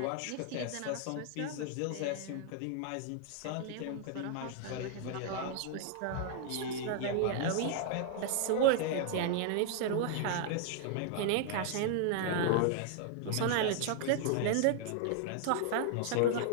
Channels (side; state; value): both; different; correlation 0.00